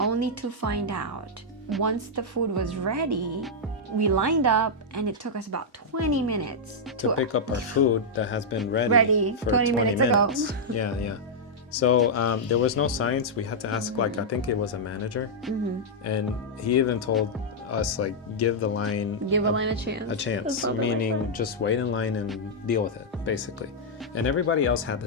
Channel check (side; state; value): both; normal; correlation -0.06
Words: to find out once the food was ready, we lined up and it took us about 20 minutes To pick up our food that has been ready for 20 20 minutes ago. minutes. Yeah. So there was no signs. We had to ask, like, I think it was a manager. And he even told us, like, give the line Give a line a chance. a That's chance, so meaning just wait in line and deal with it, basically. And everybody else had the